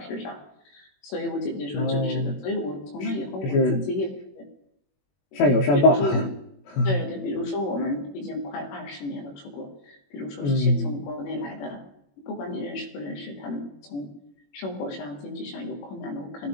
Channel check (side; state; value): right; late; 21 ms